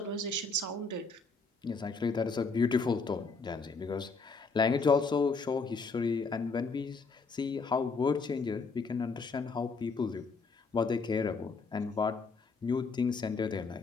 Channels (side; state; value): right; quieter; 4.3 dB